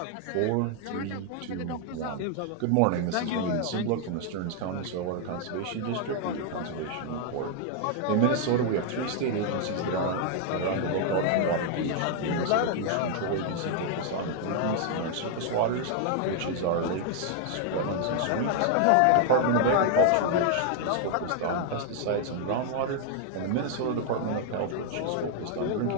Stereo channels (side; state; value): both; different; correlation 0.00